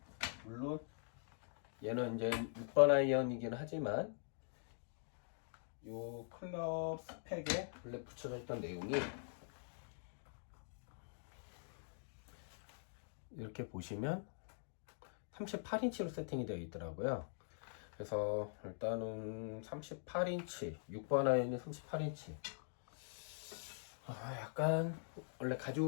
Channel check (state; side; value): silent; right; digital silence